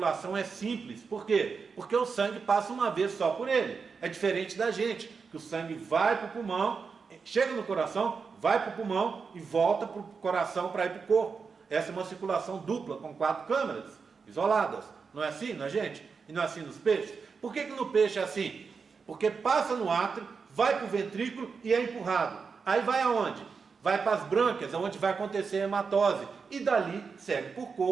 é simples. Por quê? Porque o sangue passa uma vez só por ele. É diferente da gente, que o sangue vai para o pulmão, chega no coração, vai para o pulmão e volta para o coração para ir para o corpo. Essa é uma circulação dupla, com 4 câmaras isoladas. Não é assim na gente? E não é assim nos peixes? Por que no peixe é assim? Porque passa no átrio, vai para o ventrículo e é empurrado. Aí vai aonde? Vai para as brânquias, onde vai acontecer a hematose. E dali segue por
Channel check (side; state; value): left; quieter; 5.3 dB